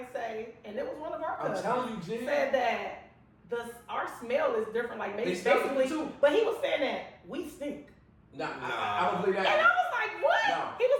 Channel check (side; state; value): both; identical; correlation 1.00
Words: say, and it was one of our I'm cousins, telling you, Jen. said that our smell is different. Like maybe They smell basically, different too. but he was saying that we stink. Nah, I don't believe And I that. was like, what? No. He